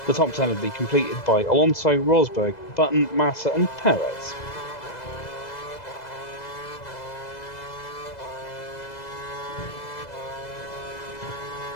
The top 10 would be completed by Alonso, Rosberg, Button, Massa and Perez.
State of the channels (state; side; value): late; right; 2.0 ms